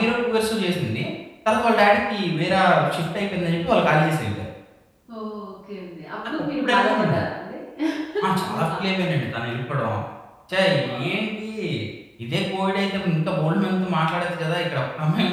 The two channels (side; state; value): both; identical; correlation 1.00